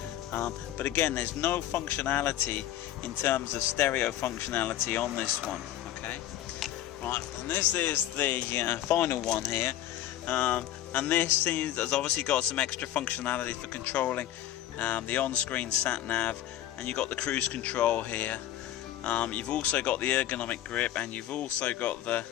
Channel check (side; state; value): right; quieter; 12.7 dB